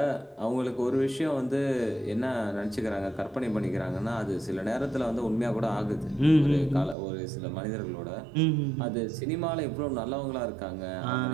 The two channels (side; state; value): left; drops out; at 7.0 s